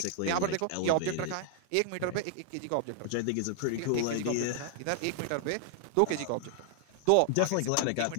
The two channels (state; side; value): different; both; correlation 0.00